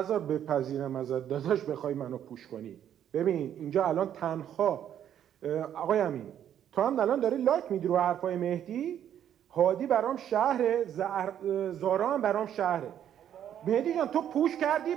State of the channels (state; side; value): quieter; left; 10.1 dB